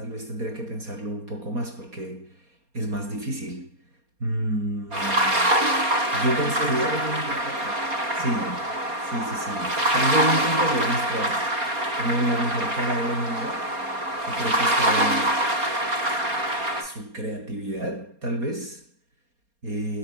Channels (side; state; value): left; late; 4.3 ms